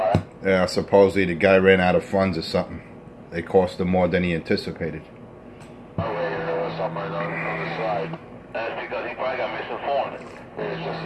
Yeah, supposedly the guy ran out of funds or something. They cost him more than he anticipated. Oh, wait, there was somewhere on the side. That's because he probably got misinformed. It's just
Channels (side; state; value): both; identical; correlation 1.00